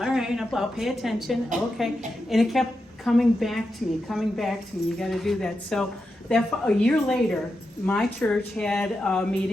right, I'll pay attention. Okay, and it kept coming back to me. You got to do that. So that a year later, my church had a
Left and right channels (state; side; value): normal; both; correlation 0.88